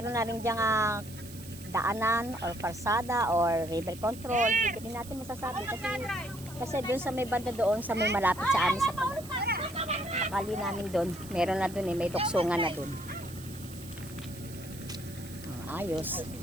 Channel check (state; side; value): noise; right; hiss, 17 dB below the sound